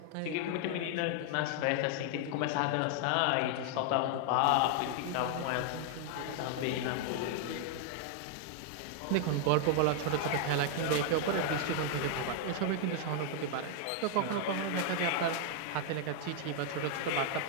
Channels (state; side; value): different; both; correlation 0.00